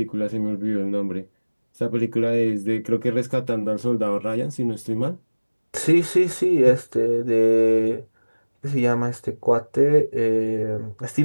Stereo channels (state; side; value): inverted; both; correlation -1.00